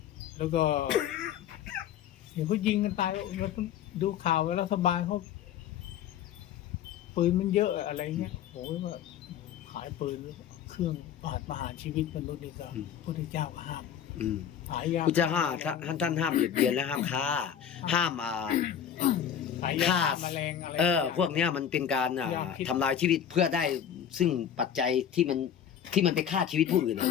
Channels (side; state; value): right; quieter; 9.1 dB